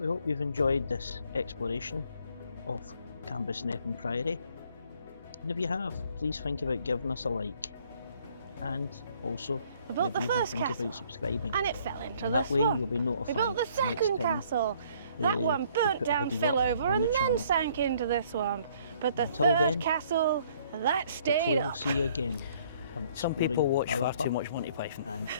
hope you've enjoyed this exploration of Cambusnethan Priory, and if you have, please think about giving us a like, and also we built the first castle about subscribing, and it fell into and the that way swamp. you'll be notified. We built the second castle. That one burnt down, fell over, and then sank into the swamp. But the third castle, that stayed up. We'll see you again. Some people watch far too much Monty Python and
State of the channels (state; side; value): inverted; both; correlation -0.61